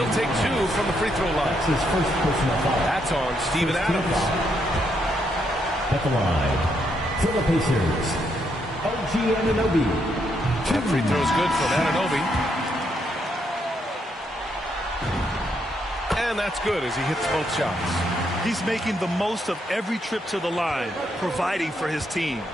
take 2 from the free throw line. That's his first personal foul. That's on Steven Adams. At the line for the Pacers, OG Anunoby. That free throw's good from Anunoby. And that's good as he hits both shots. He's making the most of every trip to the line, providing for his team.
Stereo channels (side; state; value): both; normal; correlation 0.77